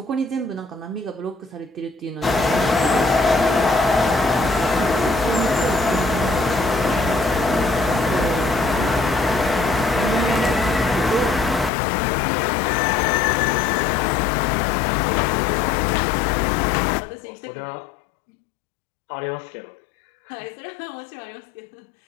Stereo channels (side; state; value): right; drops out; at 11.7 s